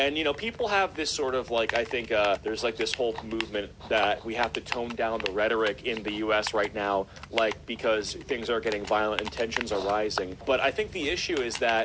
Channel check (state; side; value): identical; both; correlation 1.00